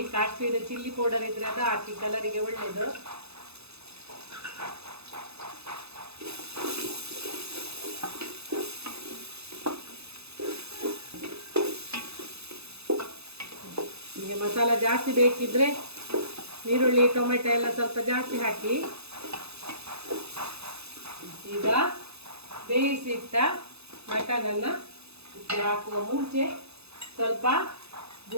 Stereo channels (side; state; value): left; late; 0.79 ms